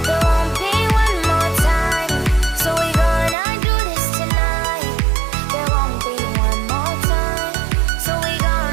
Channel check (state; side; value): drops out; left; at 3.4 s